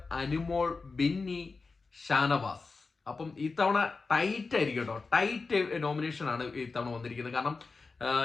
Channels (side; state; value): right; quieter; 4.2 dB